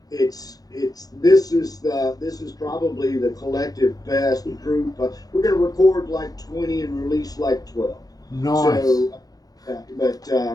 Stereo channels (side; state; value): right; late; 0.18 ms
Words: this is probably the collective best group. We're going to record like 20 and release like 12. Nice. So, but